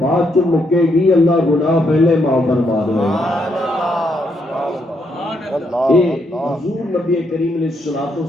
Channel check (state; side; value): normal; both; correlation 0.76